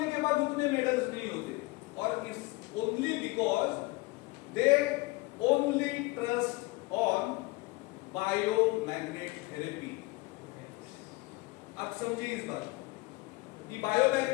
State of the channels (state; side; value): quieter; right; 23.0 dB